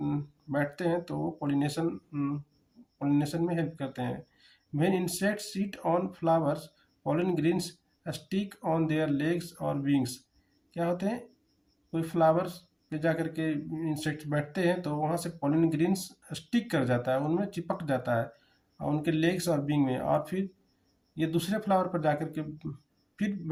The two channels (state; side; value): identical; both; correlation 1.00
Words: बैठते हैं तो वो पॉलिनेशन में हेल्प करते हैं। When insects sit on flowers, pollen grains stick on their legs और विंग्स। क्या होते हैं, कोई फ्लावर्स पे जा करके इंसेक्ट्स बैठते हैं तो वहाँ से पॉलिन ग्रेन्स स्टिक कर जाता है, उनमें चिपक जाता है और उनके लेग्स और विंग में, और फिर ये दूसरे फ्लावर पर जा करके फिर